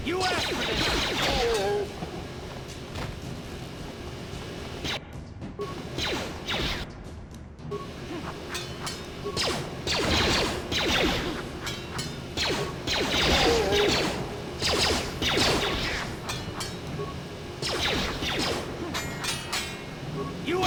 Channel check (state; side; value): identical; both; correlation 1.00